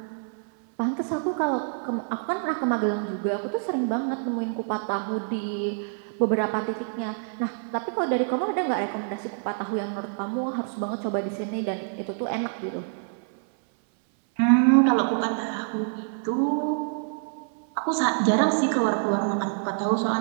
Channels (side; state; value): left; silent; 61 dB below the other